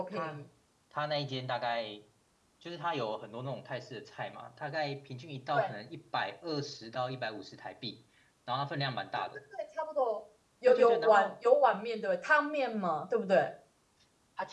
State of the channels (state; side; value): identical; both; correlation 1.00